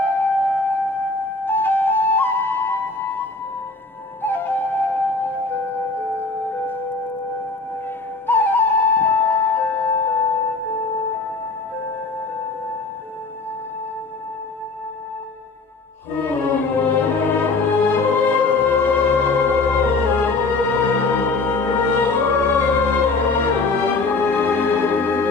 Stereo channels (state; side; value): quieter; right; 3.7 dB